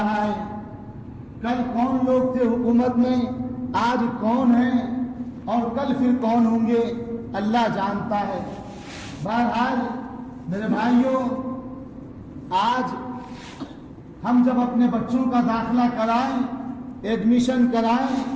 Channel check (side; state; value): both; identical; correlation 1.00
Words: ہے. کل کون لوگ تھے حکومت میں، آج کون ہیں، اور کل پھر کون ہوں گے، اللہ جانتا ہے. بہرحال میرے بھائیوں، آج ہم جب اپنے بچوں کا داخلہ کرائیں، ایڈمیشن کرائیں،